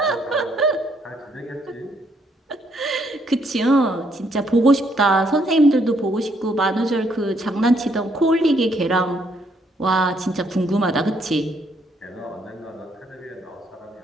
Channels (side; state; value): both; normal; correlation 0.71